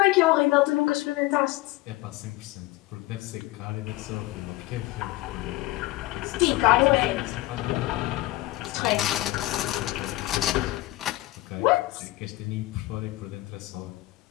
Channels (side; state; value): right; quieter; 18.5 dB